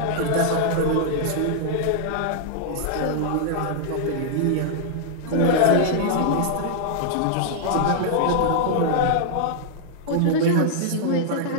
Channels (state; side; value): different; both; correlation -0.01